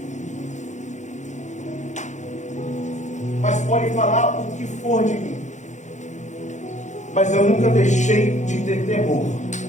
Mas pode falar o que for de mim, mas eu nunca deixei de ter temor.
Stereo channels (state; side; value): late; right; 0.35 ms